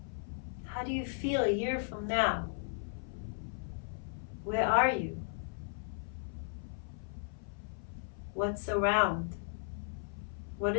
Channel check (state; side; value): silent; right; 54 dB below the other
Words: How do you feel a year from now? Where are you? What's around? What